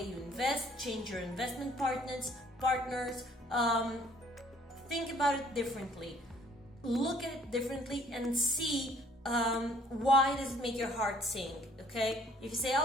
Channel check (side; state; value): both; normal; correlation 0.59